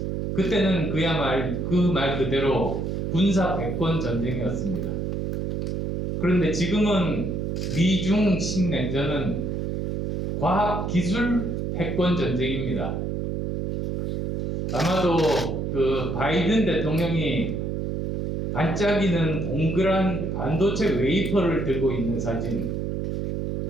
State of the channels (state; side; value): noise; right; hum, 2 dB below the sound